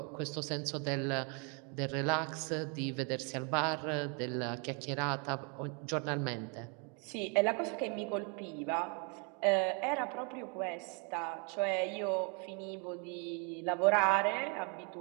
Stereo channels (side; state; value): left; quieter; 35.9 dB